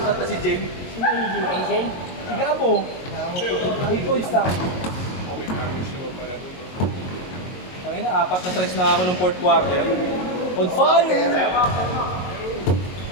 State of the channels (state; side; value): late; right; 22 ms